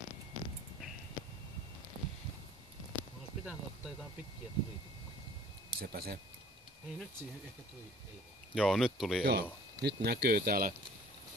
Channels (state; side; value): normal; both; correlation 0.52